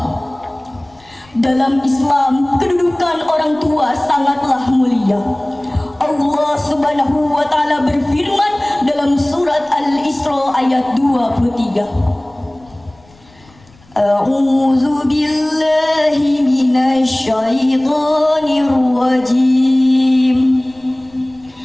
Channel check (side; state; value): left; noise; rumble, 28 dB below the sound